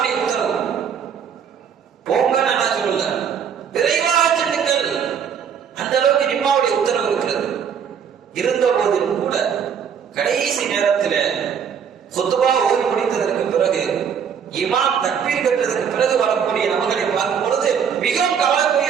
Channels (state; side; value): quieter; left; 7.5 dB